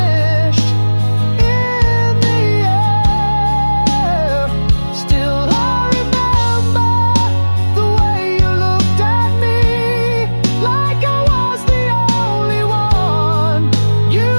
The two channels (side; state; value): both; inverted; correlation -1.00